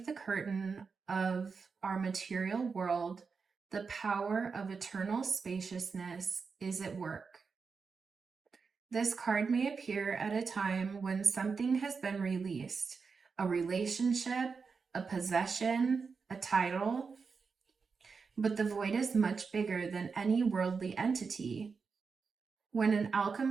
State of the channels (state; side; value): quieter; left; 5.1 dB